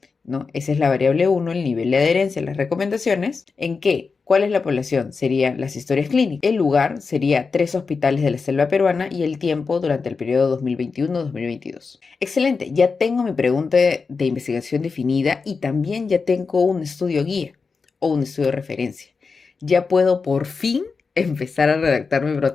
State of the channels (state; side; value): quieter; right; 4.8 dB